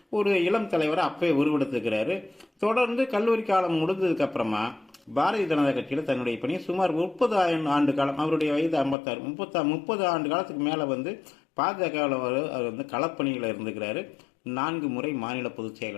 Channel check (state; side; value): drops out; right; at 9.0 s